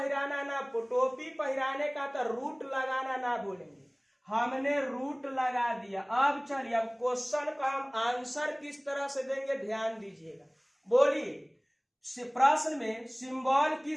ना, टोपी पहिराने का तो रूट लगाना ना भूलेंगे। हमने रूट लगा दिया। अब चलिए, अब क्वेश्चन का हम आंसर किस तरह से देंगे ध्यान दीजिएगा। बोलिए, प्रश्न में सिंबल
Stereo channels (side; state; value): both; identical; correlation 1.00